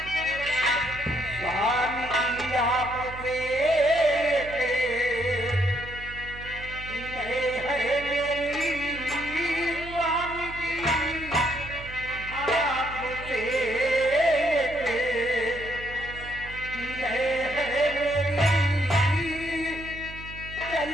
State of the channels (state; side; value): noise; right; hum, 14 dB below the sound